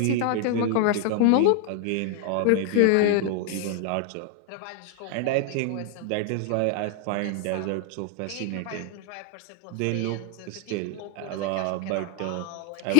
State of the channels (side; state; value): both; different; correlation 0.00